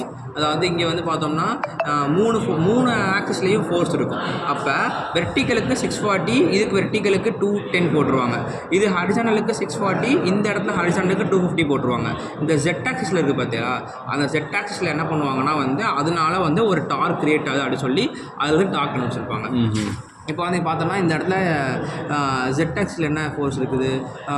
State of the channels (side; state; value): both; identical; correlation 1.00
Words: அதாவது இங்கே வந்து பார்த்தோம்னா மூணு ஆக்சிஸ்லேயும் ஃபோர்ஸ் இருக்கும். அப்போ வெர்டிக்கலுக்கு 640, இதுக்கு வெர்டிக்கலுக்கு 210 போட்டுருவாங்க. இது ஹரிசானலுக்கு 640, இந்த இடத்துல ஹரிசானலுக்கு 250 போட்டுருவாங்க. இந்த ஜெட் ஆக்சிஸில் இருக்குது பார்த்தியா, அந்த ஜெட் ஆக்சிஸில் என்ன பண்ணுவாங்கன்னா வந்து அதனால வந்து ஒரு டார்க் கிரியேட் ஆகுது அப்படின்னு சொல்லி அது வந்து டார்க் கண்டுபிடிச்சிருப்பாங்க. இப்போ வந்து பார்த்தோம்னா இந்த இடத்துல ZX என்ன ஃபோர்ஸ் இருக்குது?